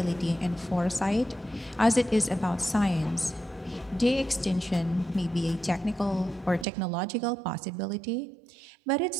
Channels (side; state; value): left; drops out; at 6.7 s